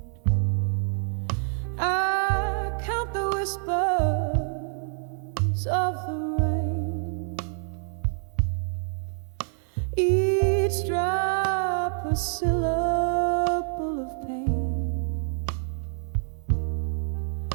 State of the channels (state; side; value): silent; left; 58 dB below the other